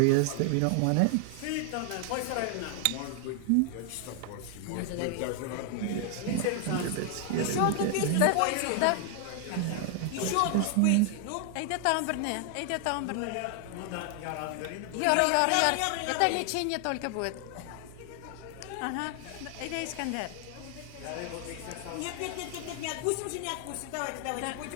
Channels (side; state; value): both; different; correlation 0.00